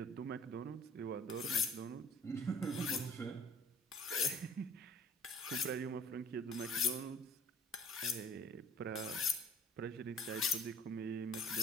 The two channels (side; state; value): both; normal; correlation 0.50